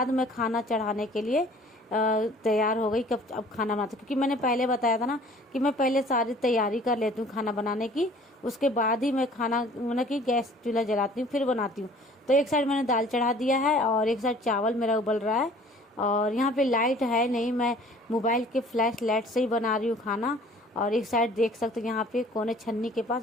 मैं खाना चढ़ाने के लिए तैयार हो गई। कब अब खाना बनाती, क्योंकि मैंने पहले बताया था ना कि मैं पहले सारी तैयारी कर लेती हूँ खाना बनाने की, उसके बाद ही मैं खाना मतलब कि गैस चूल्हा जलाती हूँ फिर बनाती हूँ। तो एक साइड मैंने दाल चढ़ा दिया है और एक साइड चावल मेरा उबल रहा है। और यहाँ पे लाइट है नहीं, मैं मोबाइल के फ्लैश लाइट से ही बना रही हूँ खाना। और एक साइड देख सकते हो यहाँ पे कोने छन्नी के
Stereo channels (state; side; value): normal; both; correlation 0.51